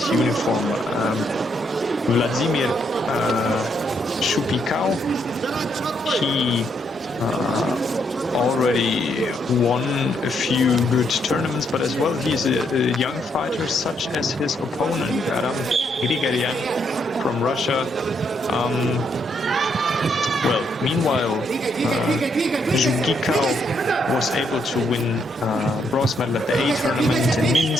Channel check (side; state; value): both; normal; correlation 0.75